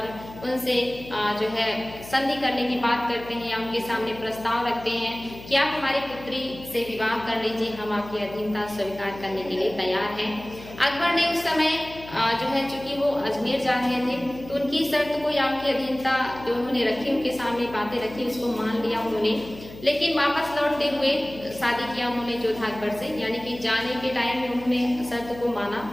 उनसे जो है संधि करने की बात करते हैं या उनके सामने प्रस्ताव रखते हैं कि आप हमारी पुत्री से विवाह कर लीजिए, हम आपकी अधीनता स्वीकार करने के लिए तैयार हैं। अकबर ने उस समय जो है चूंकि वो अजमेर जा रहे थे तो उनकी शर्त को या उनकी अधीनता जो उन्होंने रखी, उनके सामने बातें रखी, उसको मान लिया उन्होंने। लेकिन वापस लौटते हुए शादी किया उन्होंने जोधा अकबर से, यानी कि जाने के टाइम में उन्होंने शर्त को माना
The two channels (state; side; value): noise; left; hum, 16 dB below the sound